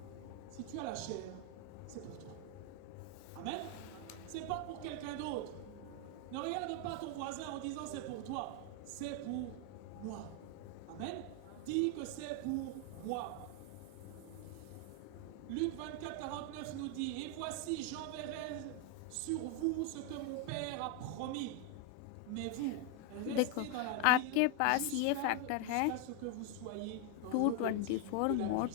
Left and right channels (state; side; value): different; both; correlation 0.01